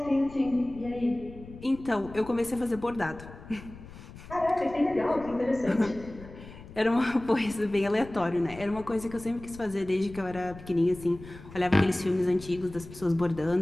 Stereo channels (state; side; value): noise; left; rumble, 16 dB below the sound